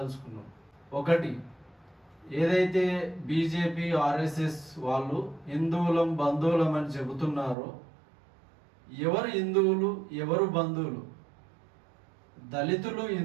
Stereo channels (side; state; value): left; drops out; at 7.6 s